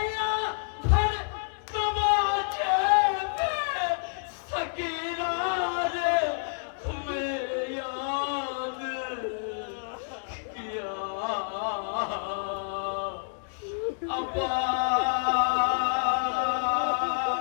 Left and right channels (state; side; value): silent; right; digital silence